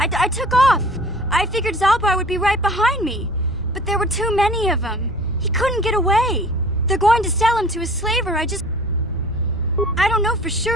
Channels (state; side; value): normal; both; correlation 0.47